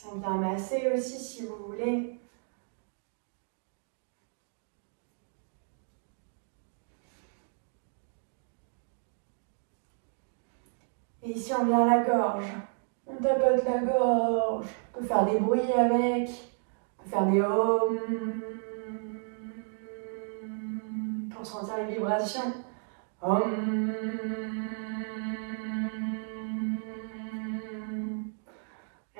On vient masser aussi si vous voulez. Et ici, on vient à la gorge. On tapote la gorge. On peut faire des bruits avec. On peut faire des ohms pour sentir les vibrations. Om.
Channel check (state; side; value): silent; left; 56 dB below the other